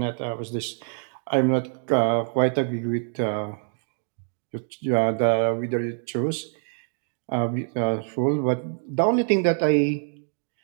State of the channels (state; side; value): silent; left; digital silence